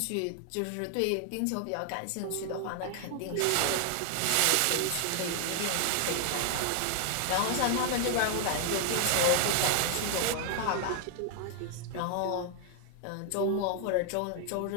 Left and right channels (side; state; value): both; different; correlation 0.00